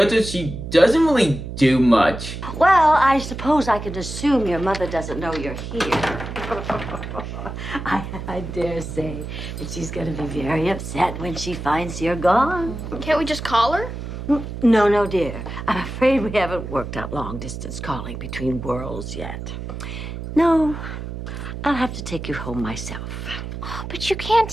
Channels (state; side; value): noise; right; hum, 8 dB below the sound